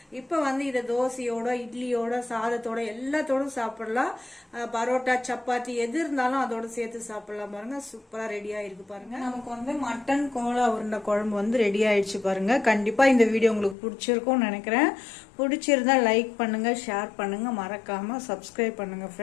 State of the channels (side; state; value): right; drops out; at 13.8 s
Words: இப்போ வந்து இதை தோசையோட, இட்லியோட, சாதத்தோட எல்லாத்தோடும் சாப்பிடலாம். பரோட்டா, சப்பாத்தி எது இருந்தாலும் அதோட சேர்த்து சாப்பிடலாம் பாருங்க. சூப்பரா ரெடி ஆயிருக்கு பாருங்க. நமக்கு வந்து மட்டன் கோலா உருண்டை குழம்பு வந்து ரெடி ஆயிடுச்சு பாருங்க. கண்டிப்பா இந்த வீடியோ உங்களுக்கு பிடிச்சிருக்கும்னு நினைக்கிறேன். பிடிச்சிருந்தா லைக் பண்ணுங்க, ஷேர் பண்ணுங்க, மறக்காம சப்ஸ்கிரைப் பண்ணுங்க